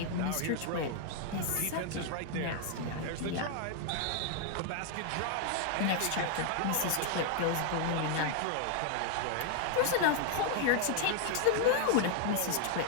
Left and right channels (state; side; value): different; both; correlation 0.00